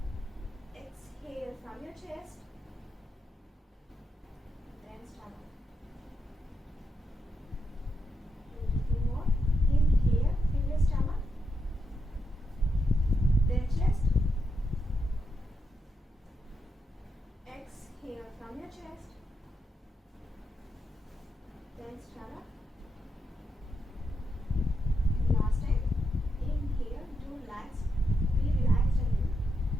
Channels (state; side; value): normal; both; correlation 0.84